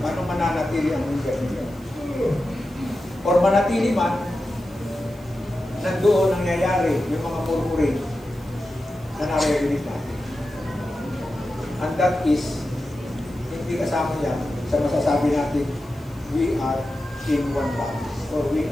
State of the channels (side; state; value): right; noise; hiss, 28 dB below the sound